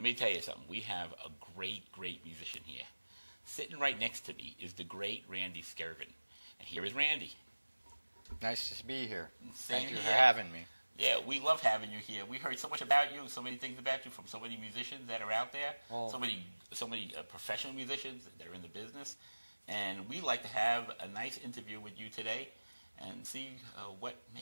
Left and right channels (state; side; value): inverted; both; correlation -1.00